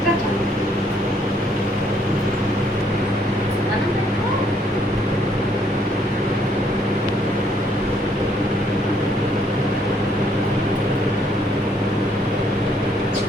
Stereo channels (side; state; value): both; normal; correlation 0.68